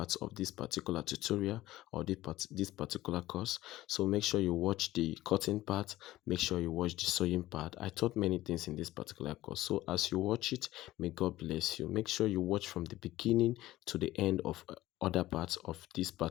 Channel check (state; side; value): quieter; right; 16.1 dB